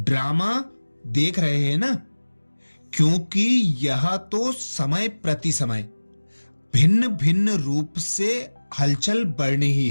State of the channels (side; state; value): both; inverted; correlation -1.00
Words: देख रहे हैं ना, क्योंकि यह तो समय प्रति समय भिन्न भिन्न रूप से हलचल बढ़नी ही